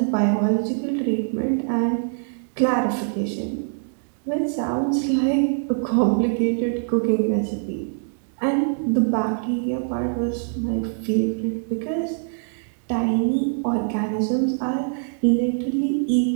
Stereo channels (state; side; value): silent; left; digital silence